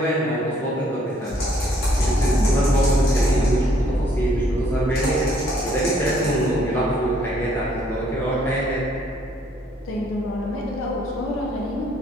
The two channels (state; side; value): normal; both; correlation 0.65